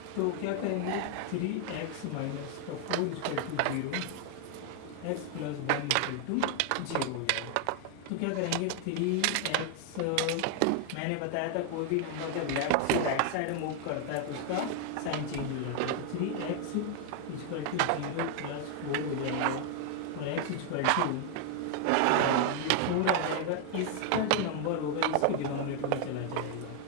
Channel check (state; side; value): different; both; correlation 0.00